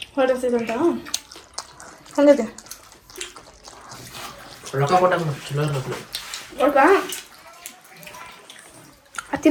ಹೊರಡ್ತಿದಂತ ಹಂಗೈತೆ ರೊಕ್ಕ ಕೊಟ್ಟಾಗ ಚಲೋ ಇರಬೇಕು. ಒಳಗ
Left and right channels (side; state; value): both; identical; correlation 1.00